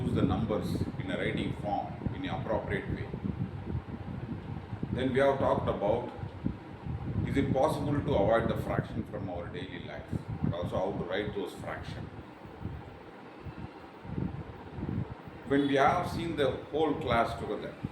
the numbers in a writing form in an appropriate way. Then we have talked about, is it possible to avoid the fraction from our daily life, and also how to write those fractions. When we have seen the whole class together,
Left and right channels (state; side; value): identical; both; correlation 1.00